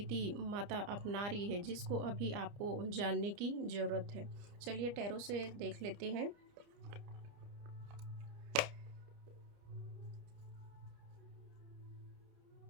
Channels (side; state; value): left; late; 30 ms